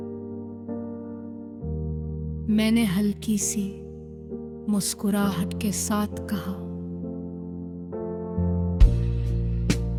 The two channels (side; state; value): both; identical; correlation 1.00